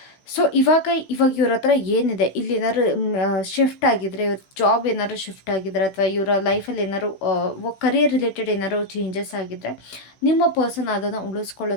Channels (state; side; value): late; right; 16 ms